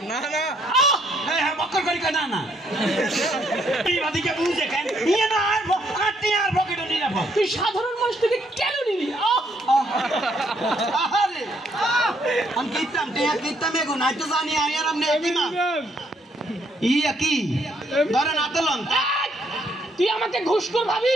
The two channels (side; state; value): both; normal; correlation 0.70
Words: না না, হ্যাঁ বক্কর করি না না, এই বাদিকে বুঝে কেন ইয়ে না, আর টিয়ার পকেটে নিরাপদ। তুই সাধারণ মানুষ থেকে কেন নিলি? আরে আমি কিতাম টিয়া কিতাম এগো নাই তো জানি আমি আর আপনি একই না ইয়া কি ধরেন আতলন। তুই আমাকে ঘুষখোর